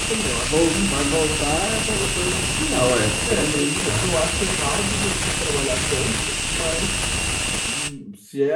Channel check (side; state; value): both; identical; correlation 1.00